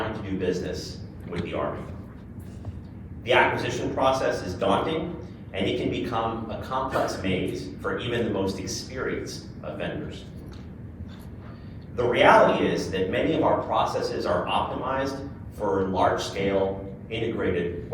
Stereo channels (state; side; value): identical; both; correlation 1.00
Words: to do business with the Army. The acquisition process is daunting, and it can become a complex maze for even the most experienced of vendors. The reality is that many of our processes are optimized for large-scale integrated